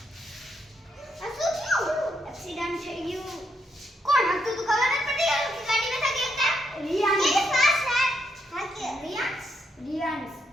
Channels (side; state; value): both; normal; correlation 0.78